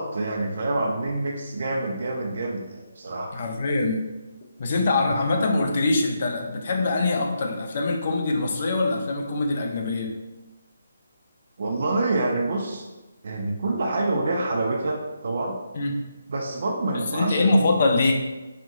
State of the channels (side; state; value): both; inverted; correlation -0.80